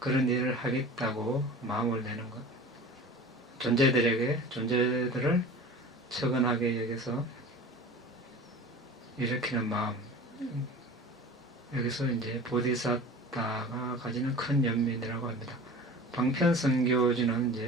일을 하겠다고 마음을 내는 것, 존재들을 처근하게 여기서 일으키는 마음, 여기서 이제 보디사타가 가지는 큰 연민이라고 합니다. 방편성교지는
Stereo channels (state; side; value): normal; both; correlation 0.38